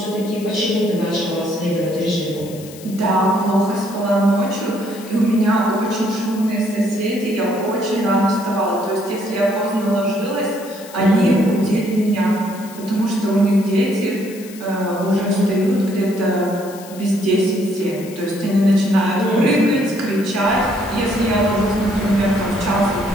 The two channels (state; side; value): noise; left; hiss, 18 dB below the sound